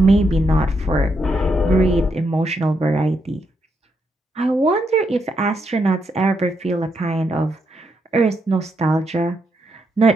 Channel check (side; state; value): both; normal; correlation 0.79